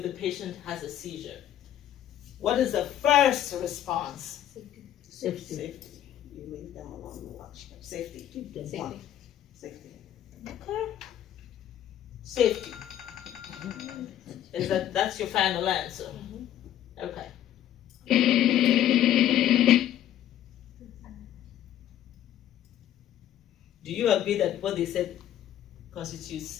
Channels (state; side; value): quieter; right; 11.5 dB